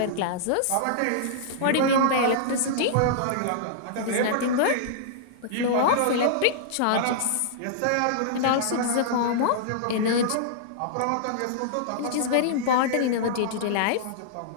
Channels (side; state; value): both; different; correlation -0.02